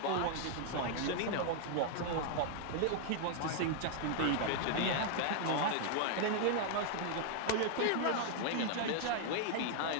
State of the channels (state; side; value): different; both; correlation 0.00